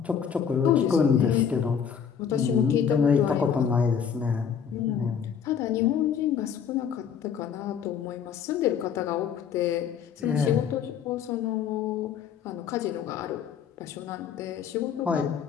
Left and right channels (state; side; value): quieter; right; 7.6 dB